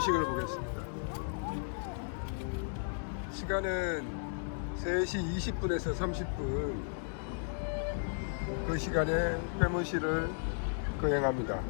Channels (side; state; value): right; silent; digital silence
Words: 보겠습니다. 시간은 3시 20분에서 30분. 그 시간에 해문식을 거행합니다.